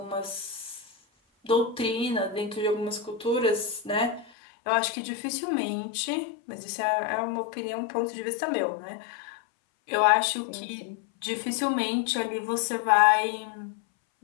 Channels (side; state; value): right; drops out; at 4.3 s